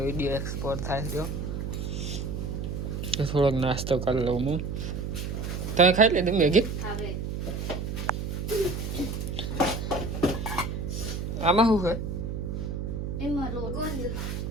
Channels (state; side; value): noise; right; hum, 4 dB below the sound